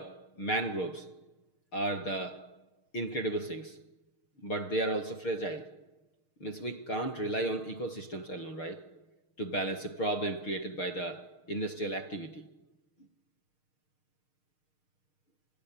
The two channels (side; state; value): right; late; 6.5 ms